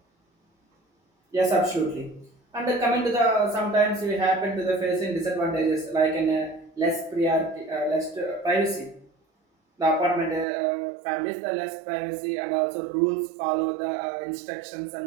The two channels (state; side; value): drops out; left; at 10.5 s